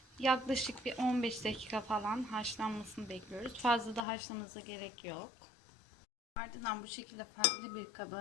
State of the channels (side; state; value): right; drops out; at 4.0 s